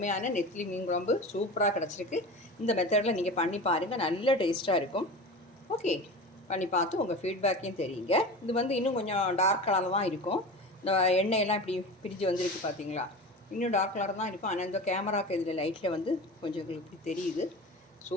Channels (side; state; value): both; normal; correlation 0.31